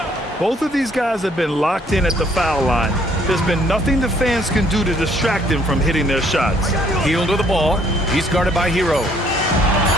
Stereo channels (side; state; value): both; normal; correlation 0.64